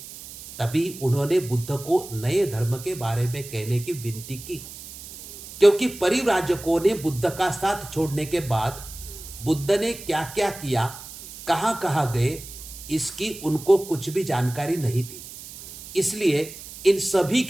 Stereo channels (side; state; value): right; noise; hiss, 14 dB below the sound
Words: उन्होंने बुद्ध को नए धर्म के बारे में कहने की विनती की, क्योंकि परिव्राजकों ने बुद्ध का साथ छोड़ने के बाद बुद्ध ने क्या क्या किया, कहां कहां गए, इसकी उनको कुछ भी जानकारी नहीं थी। इसलिए इन सभी